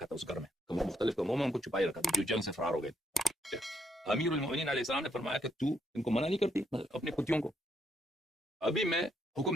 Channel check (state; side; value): normal; both; correlation 0.75